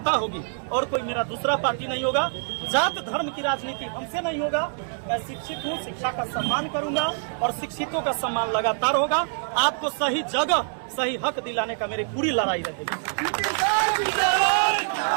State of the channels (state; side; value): silent; left; digital silence